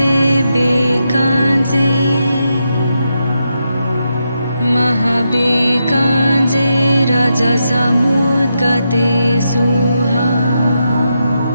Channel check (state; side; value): inverted; both; correlation -0.84